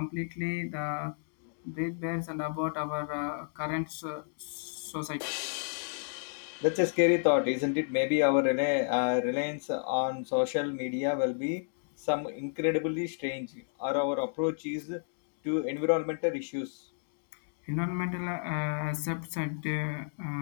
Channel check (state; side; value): silent; right; digital silence